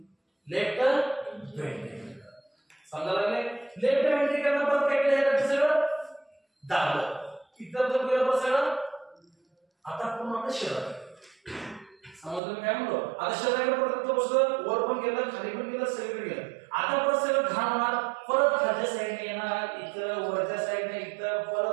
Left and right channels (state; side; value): drops out; left; at 12.4 s